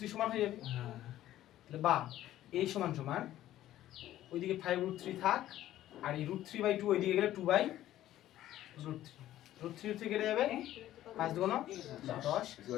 সমান হয়ে যাবে। হ্যাঁ তাহলে বা এই সমান সমান ওইদিকে 5√3 থাক, আর এই √3/2 ওইদিকে গেলে 2/√3 কেটে যাবে। 5 2 9 10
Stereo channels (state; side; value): quieter; right; 13.5 dB